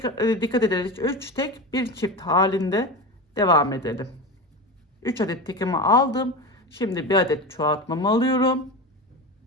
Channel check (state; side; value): normal; both; correlation 0.24